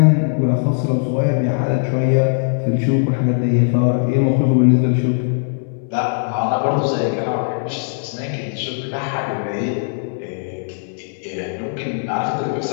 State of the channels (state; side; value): silent; right; 66 dB below the other